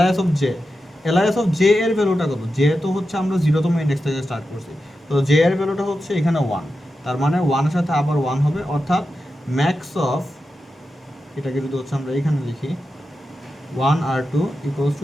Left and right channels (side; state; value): both; normal; correlation 0.90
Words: of J. LIS of J এর ভ্যালুটা কত? জে তো হচ্ছে আমরা 0তম ইন্ডেক্স থেকে স্টার্ট করছি, তো জে এর ভ্যালুটা হচ্ছে এখানে 1, তার মানে 1 এর সাথে আবার 1 হবে, অর্থাৎ ম্যাক্স অফ, এটাকে যদি হচ্ছে আমরা এখানে লিখি 1 আর 2 ইকুয়ালস